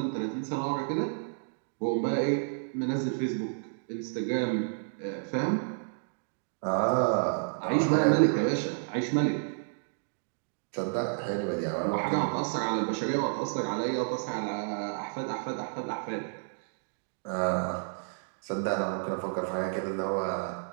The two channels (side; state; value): left; silent; digital silence